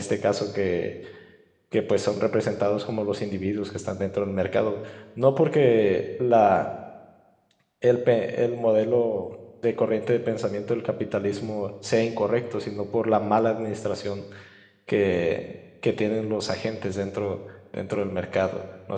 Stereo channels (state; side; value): identical; both; correlation 1.00